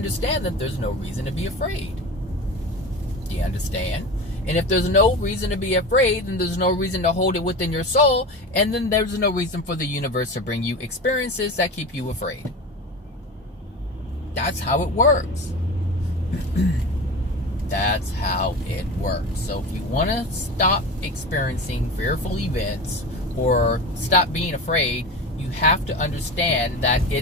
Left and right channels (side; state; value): both; normal; correlation 0.29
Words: that there's no reason to be afraid. Do you understand? And if there's no reason to be afraid, then there's no reason to hold it within your soul, and then there's no reason for the universe to bring you experiences that keep you afraid. That's how it works. That's how it works. So if you want to stop experiencing fearful events or stop being afraid, you have to understand that